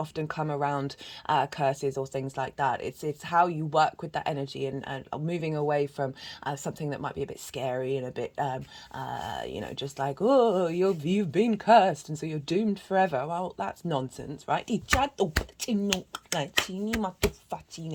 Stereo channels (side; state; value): both; identical; correlation 1.00